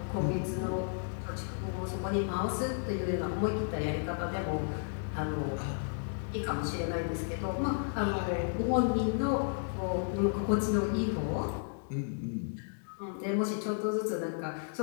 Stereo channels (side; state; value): right; silent; digital silence